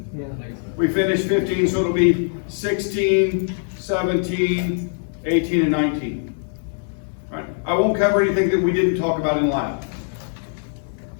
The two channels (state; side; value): silent; right; 64 dB below the other